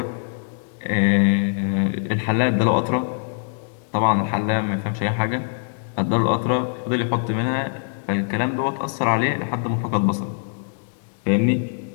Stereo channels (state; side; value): silent; right; digital silence